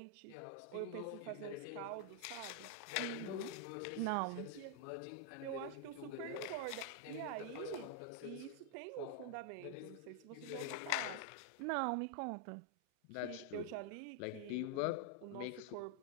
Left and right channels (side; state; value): both; different; correlation 0.00